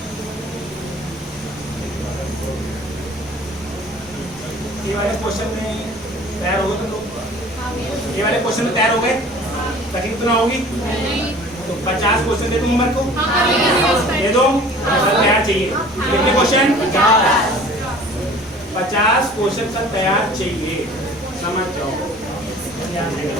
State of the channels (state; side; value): normal; both; correlation 0.47